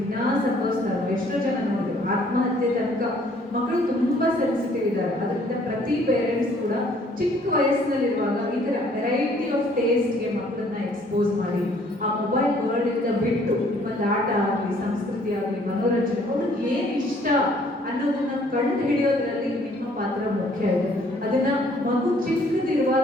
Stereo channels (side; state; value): both; normal; correlation 0.61